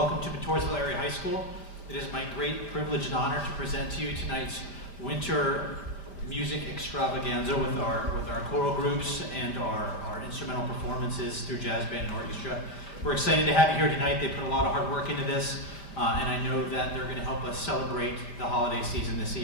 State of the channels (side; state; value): right; late; 5.0 ms